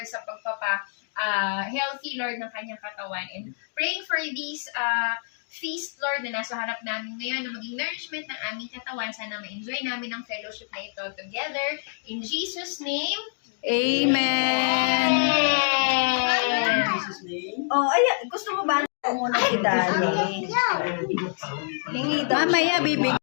sa healthy, Lord, ng kanyang katawan. And praying for this feast, Lord, na nasa harap namin ngayon, na maging nourishment ng aming katawan. Sana ma-enjoy namin ang fellowship na ito together. In Jesus' name, Amen. Oh, ay, gusto mo ba muna si Daddy? Hingi daw. Mamaya, bibig.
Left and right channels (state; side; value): silent; right; digital silence